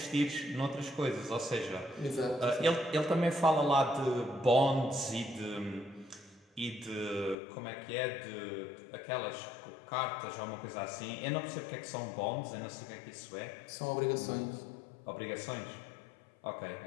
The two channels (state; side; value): drops out; right; at 7.4 s